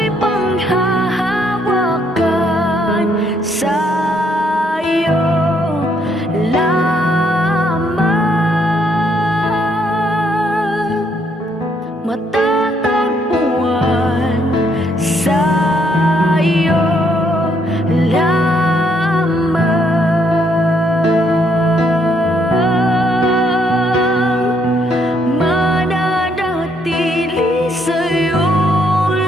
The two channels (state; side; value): normal; both; correlation 0.71